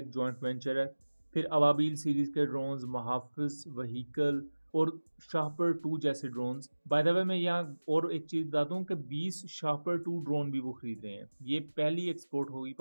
जॉइंट वेंचर है, फिर अबाबील सीरीज के ड्रोन्स, मुहाफिज व्हीकल और शाहपर 2 जैसे ड्रोन्स। बाय द वे, मैं यहाँ और एक चीज़ बता दूँ कि 20 शाहपर 2 ड्रोन भी वो खरीद रहे हैं। ये पहली एक्सपोर्ट होगी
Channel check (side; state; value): both; inverted; correlation -1.00